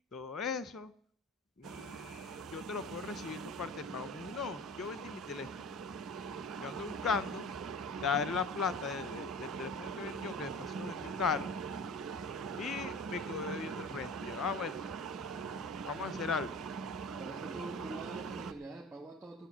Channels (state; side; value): normal; both; correlation 0.37